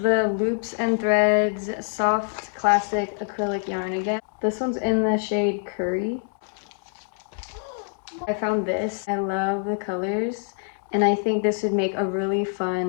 the Loops and Threads soft classic acrylic yarn again. This one's in the shade Curry. I found this. I love the colors, and I think this would make a really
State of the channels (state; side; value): silent; right; digital silence